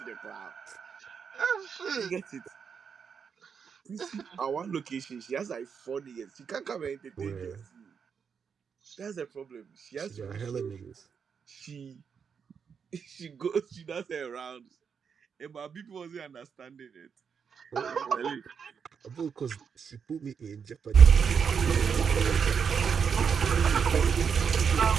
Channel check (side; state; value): left; quieter; 6.6 dB